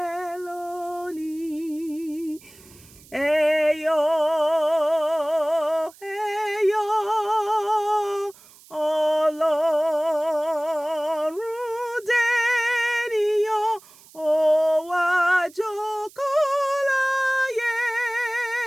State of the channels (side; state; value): right; noise; hiss, 24 dB below the sound